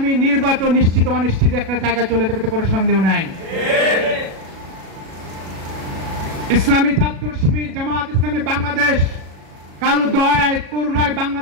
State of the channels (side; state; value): left; late; 37 ms